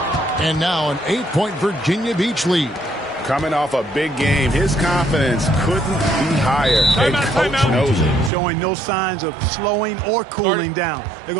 And now an 8-point Virginia Beach lead. Coming off a big game, his confidence couldn't be higher. And coach knows it. Showing no signs of slowing or cooling down. They're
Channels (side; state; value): left; drops out; at 8.3 s